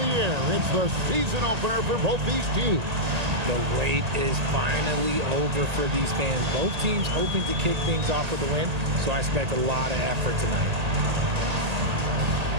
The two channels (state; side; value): late; left; 1.8 ms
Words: air. It's the season opener for both these teams. The wait is finally over for these fans. Both teams hoping to kick things off with a win, so I expect a lot of effort tonight.